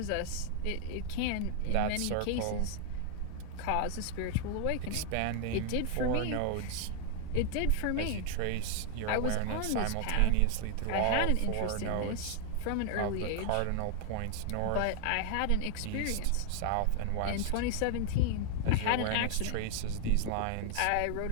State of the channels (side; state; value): both; different; correlation 0.00